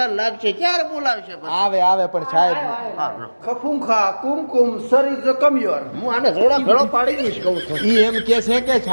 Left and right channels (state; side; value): inverted; both; correlation -1.00